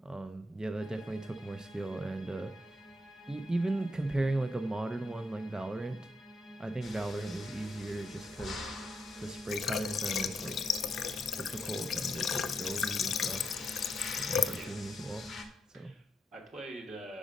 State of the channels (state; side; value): normal; both; correlation 0.81